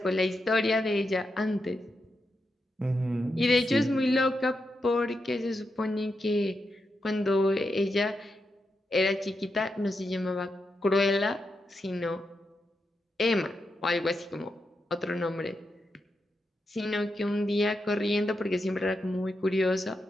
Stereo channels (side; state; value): both; normal; correlation 0.86